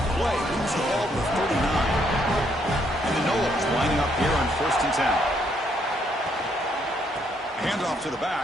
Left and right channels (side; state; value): both; normal; correlation 0.72